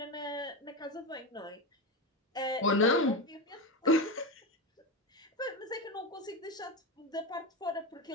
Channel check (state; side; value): normal; both; correlation 0.17